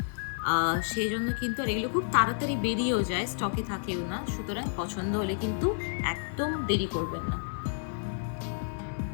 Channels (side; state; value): right; silent; digital silence